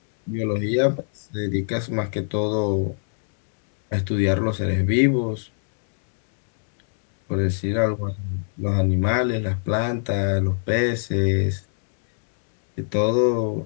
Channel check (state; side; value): silent; right; digital silence